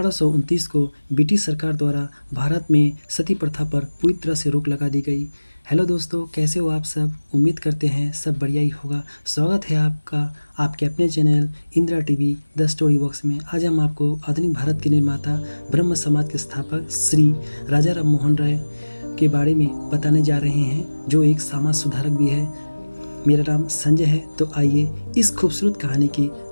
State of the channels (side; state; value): both; inverted; correlation -1.00